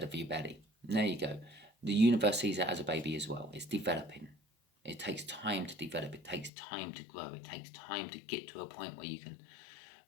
of your belly. There you go. The universe sees it as a baby as well. It's developing. It takes time to develop. It takes time to grow. It takes time to get to a point where you can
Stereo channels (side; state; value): right; drops out; at 6.5 s